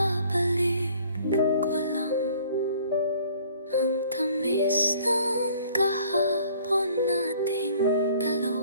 ko lang ang tamis ng kahapon nating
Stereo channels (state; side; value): inverted; both; correlation -0.55